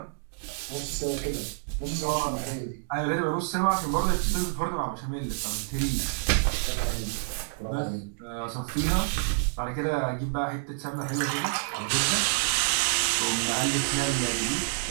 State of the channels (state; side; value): silent; left; 59 dB below the other